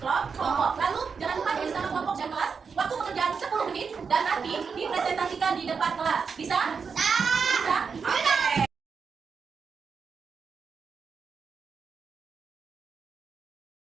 Lalu jangan lupa tulis nama kelompok dan kelas. Waktu pekerjaan 10 menit dan nanti dipresentasikan di depan kelas. Bisa? Bisa? Oke.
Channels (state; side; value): quieter; left; 5.7 dB